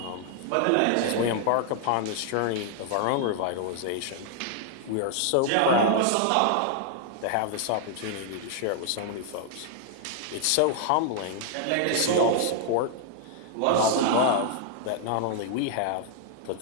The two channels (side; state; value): both; different; correlation 0.00